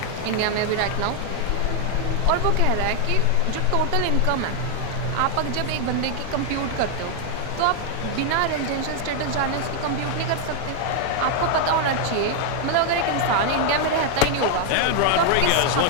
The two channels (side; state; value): both; different; correlation 0.00